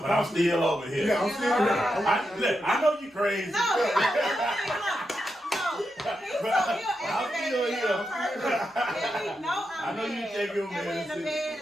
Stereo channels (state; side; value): normal; both; correlation 0.86